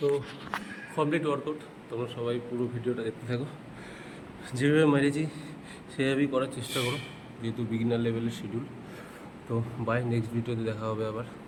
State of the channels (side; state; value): both; identical; correlation 1.00